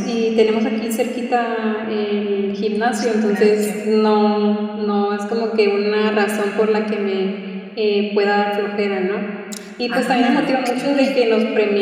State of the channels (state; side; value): identical; both; correlation 1.00